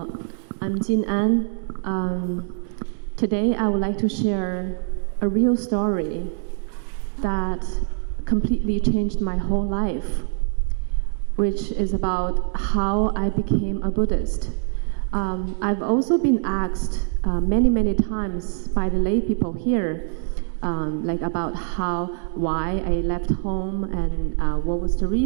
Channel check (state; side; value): silent; left; digital silence